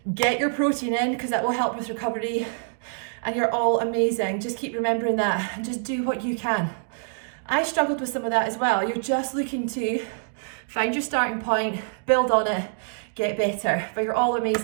get your protein in, because that will help with recovery. And you're all amazing. Just keep remembering that and just do what you can. I struggled with some of that as well. You're just looking to find your starting point, build on it, get better. But you're all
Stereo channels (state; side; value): silent; left; digital silence